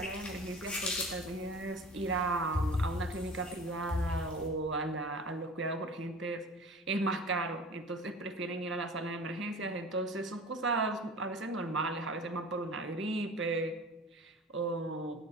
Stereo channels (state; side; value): normal; both; correlation 0.39